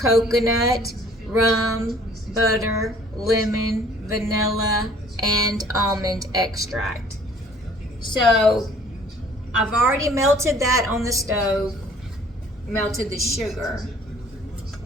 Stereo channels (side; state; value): both; normal; correlation 0.55